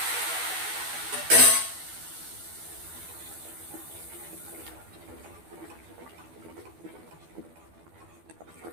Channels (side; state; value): left; late; 12 ms